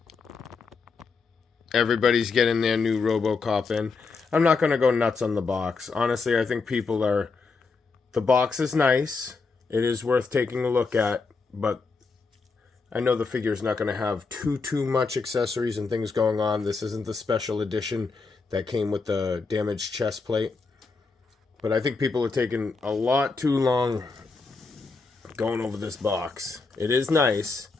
Everybody's getting their new Robocop in. I'm not going to go nuts on the box. Honestly, I think people are... The box is nice. It is worth taking a look at, but I know the figure's not going to have too much accessories and things going on. This isn't the special edition that came with the damaged chest plate. But I think people are taking a lot too long going over this box. It is nice,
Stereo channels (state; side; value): quieter; right; 4.4 dB